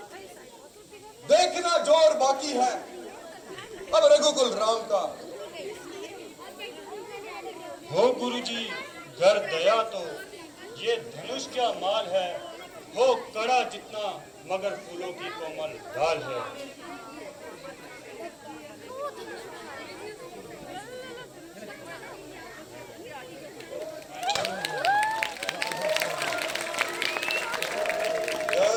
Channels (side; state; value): both; identical; correlation 1.00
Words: देखना जोर बाकी है अब रघुकुल राम का। हो गुरु जी घर दया तो ये धनुष क्या माल है, हो कड़ा जितना मगर फूलों की कोमल डाल है।